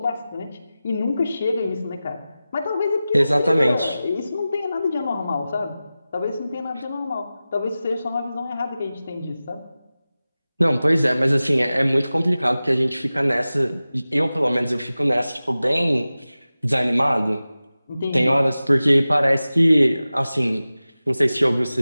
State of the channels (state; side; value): inverted; both; correlation -0.96